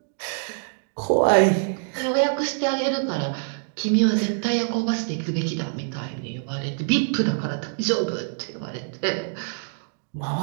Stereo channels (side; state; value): left; silent; digital silence